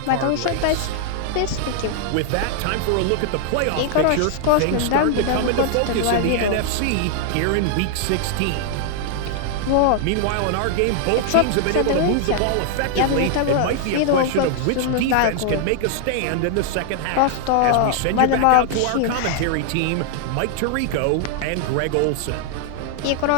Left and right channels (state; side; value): different; both; correlation 0.00